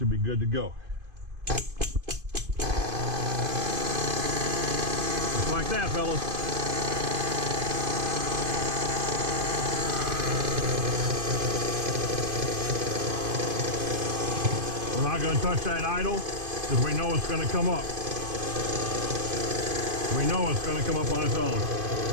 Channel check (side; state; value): left; late; 2.5 ms